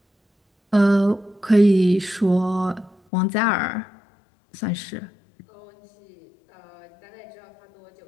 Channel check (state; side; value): drops out; right; at 3.0 s